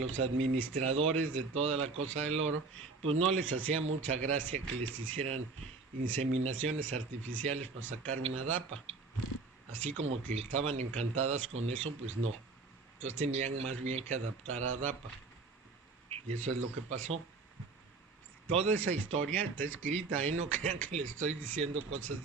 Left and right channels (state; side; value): quieter; left; 4.1 dB